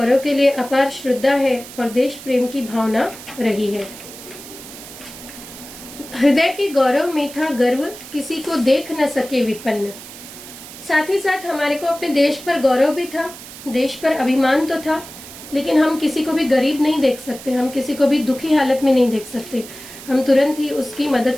के लिए अपार श्रद्धा है और देश प्रेम की भावना रही है। हृदय के गौरव में था गर्व, किसी को देख न सके विपन्न। साथ ही साथ हमारे को अपने देश पर गौरव भी था, देश पर अभिमान तो था, लेकिन हम किसी को भी गरीब नहीं देख सकते, हम किसी को भी दुखी हालत में नहीं देख सकते। हम तुरंत ही उसकी मदद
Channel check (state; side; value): noise; right; hiss, 15 dB below the sound